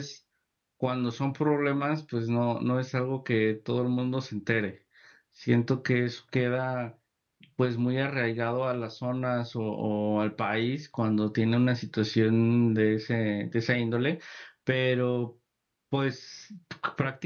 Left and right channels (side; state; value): both; identical; correlation 1.00